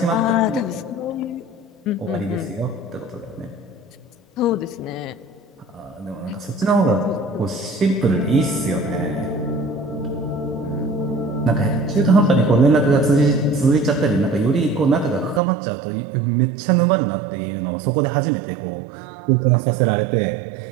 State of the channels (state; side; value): drops out; left; at 15.4 s